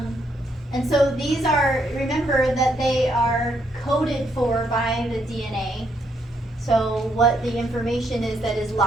and so these are, remember that they are coded for by the DNA. So what the information is that is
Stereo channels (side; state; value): both; normal; correlation 0.74